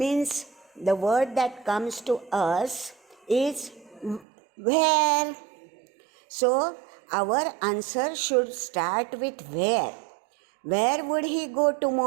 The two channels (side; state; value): left; drops out; at 4.2 s